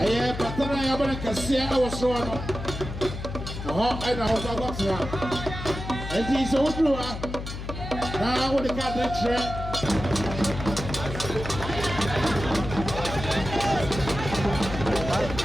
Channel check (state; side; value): noise; left; hum, 8 dB below the sound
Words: year Patana Yabanaka see I was wrong. Oh, I know how to go. And he's so true. Now with the cat